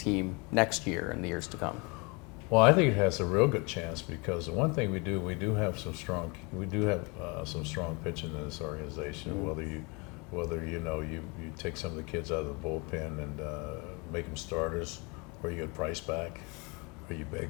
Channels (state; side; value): quieter; right; 29.5 dB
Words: next year and the years to come? Well, I think it has a real good chance because the one thing we do have some strong pitching in this organization. Whether you take some of the kids out of the bullpen and make them starters, or you get Price back, or you